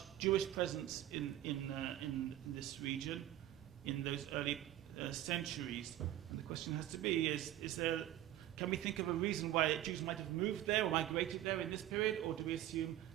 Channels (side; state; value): left; quieter; 13.2 dB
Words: Jewish presence in this region, in those early centuries. And the question has to be, can we think of a reason why Jews might have moved there or migrated there in this period, or do we assume